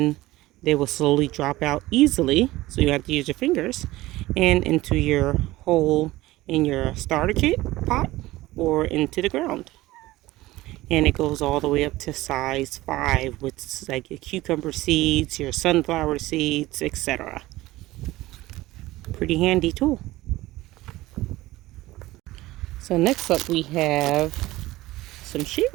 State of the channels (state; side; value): quieter; left; 18.0 dB